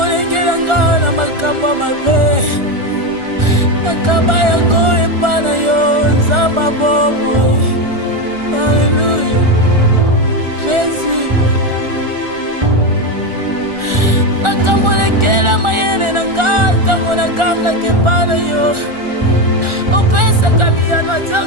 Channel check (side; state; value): left; late; 1.4 ms